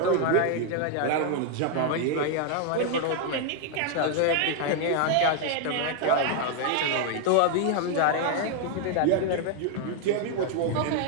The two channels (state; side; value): different; both; correlation 0.00